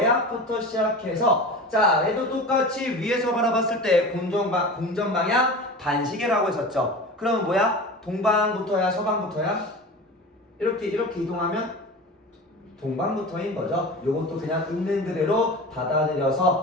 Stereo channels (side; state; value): both; normal; correlation 0.33